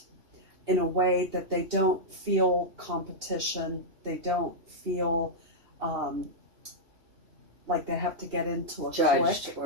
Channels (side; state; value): left; late; 3.1 ms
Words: in a way that they don't feel competition, they don't feel like they have to get into a Judged clique.